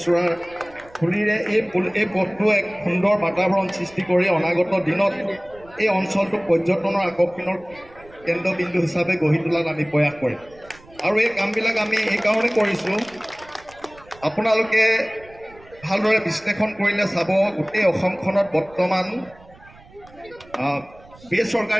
ফুলিৰে এই পথটো এক সুন্দৰ বাতাবৰণ সৃষ্টি কৰি অনাগত দিনত এই অঞ্চলটো পৰ্যটনৰ আকৰ্ষণৰ কেন্দ্ৰবিন্দু হিচাপে গঢ়ি তোলাত আমি প্ৰয়াস কৰিম। আৰু এই কামবিলাক আমি এইকাৰণে কৰিছোঁ, আপোনালোকে ভালদৰে বিশ্লেষণ কৰিলে চাব গোটেই অসমখনত বৰ্তমান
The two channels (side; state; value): right; noise; rumble, 24 dB below the sound